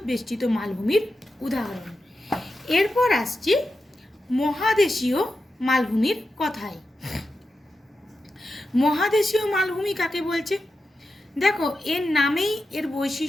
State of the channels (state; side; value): normal; both; correlation 0.90